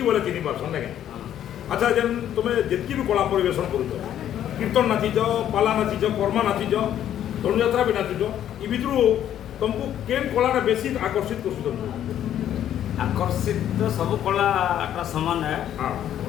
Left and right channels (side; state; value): right; quieter; 10.8 dB